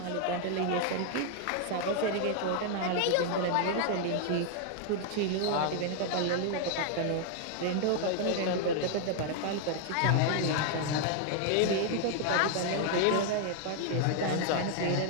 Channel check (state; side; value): different; both; correlation 0.00